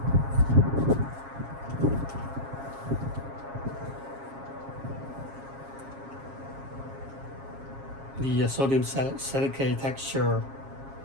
the sodium silicate texture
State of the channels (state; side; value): late; left; 7.4 ms